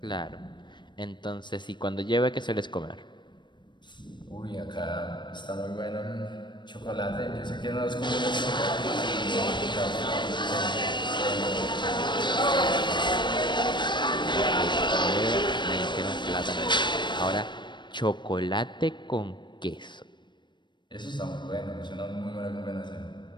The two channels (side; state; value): right; late; 0.22 ms